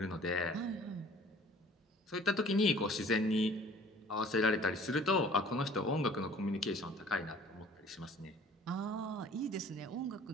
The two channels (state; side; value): normal; both; correlation 0.51